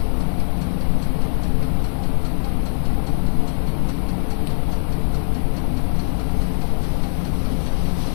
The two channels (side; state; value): right; silent; digital silence